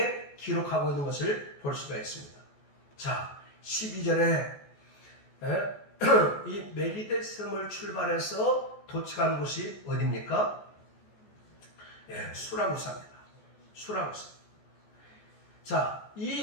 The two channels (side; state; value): right; late; 14 ms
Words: 기록하고 있는 것을 볼 수가 있습니다. 자, 12절에 이 멜리데 섬을 출발해서 도착한 곳이 어디입니까? 수라구사입니다. 수라구사. 자,